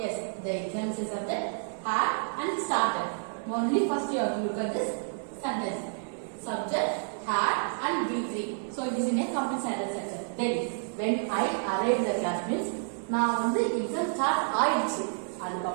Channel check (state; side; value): silent; left; 56 dB below the other